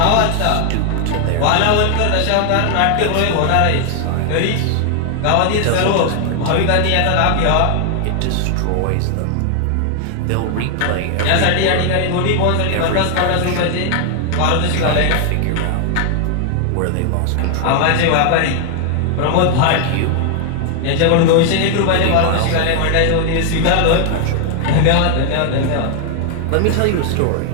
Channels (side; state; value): both; different; correlation 0.00